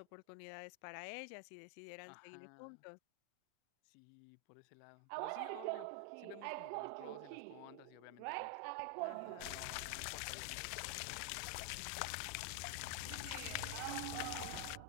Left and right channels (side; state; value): both; different; correlation 0.00